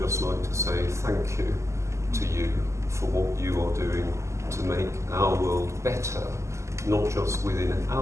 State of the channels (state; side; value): late; left; 0.14 ms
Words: like to say thank you to you for what you are doing to make our world better, not just within